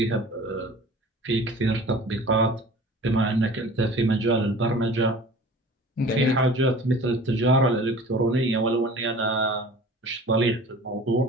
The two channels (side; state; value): both; normal; correlation 0.43